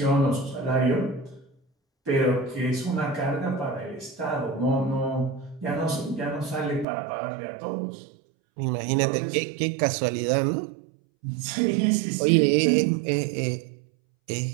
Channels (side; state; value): left; drops out; at 6.9 s